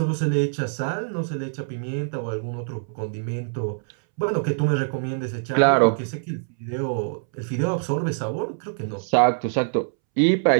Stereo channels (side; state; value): left; silent; 62 dB below the other